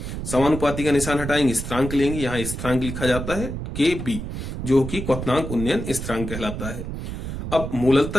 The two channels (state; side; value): noise; right; rumble, 6 dB below the sound